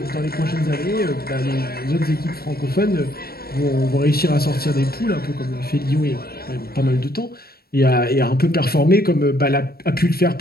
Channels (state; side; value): late; right; 0.44 ms